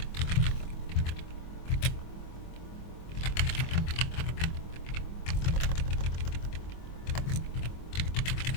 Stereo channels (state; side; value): late; right; 24 ms